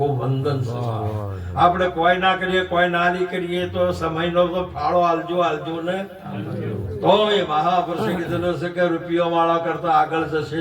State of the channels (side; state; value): both; identical; correlation 1.00